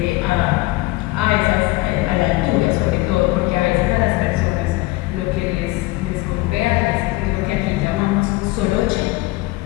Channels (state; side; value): quieter; right; 20.4 dB